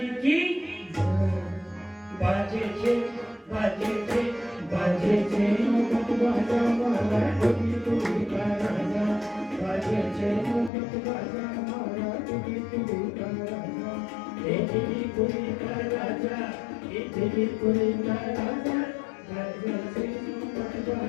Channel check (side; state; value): right; drops out; at 10.7 s